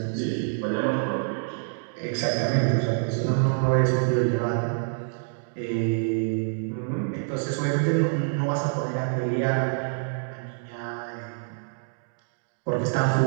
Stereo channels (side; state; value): left; silent; digital silence